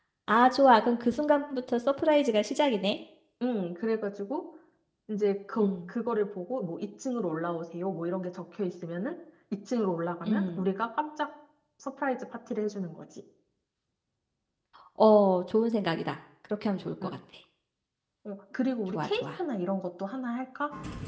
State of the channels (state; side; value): identical; both; correlation 1.00